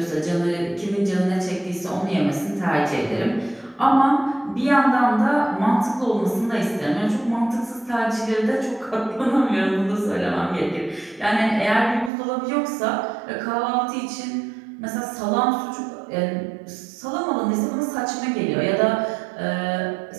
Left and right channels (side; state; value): left; drops out; at 12.1 s